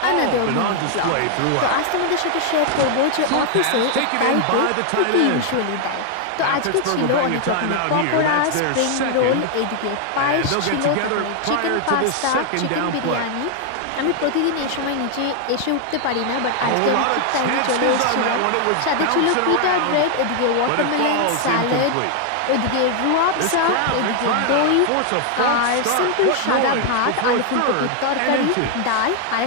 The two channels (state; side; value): different; both; correlation 0.00